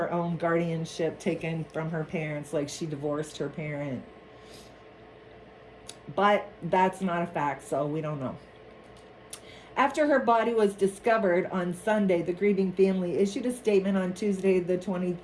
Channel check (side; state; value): both; identical; correlation 1.00